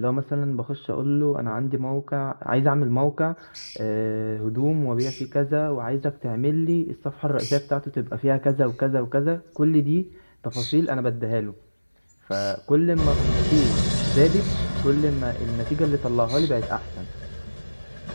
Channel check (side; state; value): both; inverted; correlation -1.00